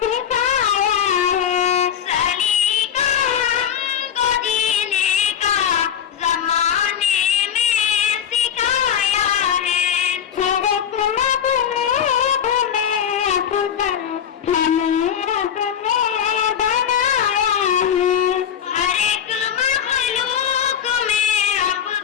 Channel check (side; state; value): right; quieter; 8.8 dB